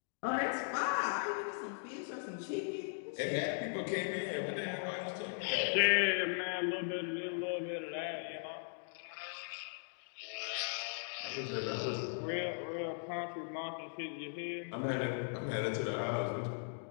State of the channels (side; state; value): right; silent; digital silence